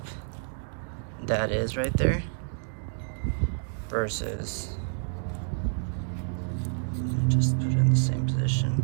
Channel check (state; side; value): silent; left; digital silence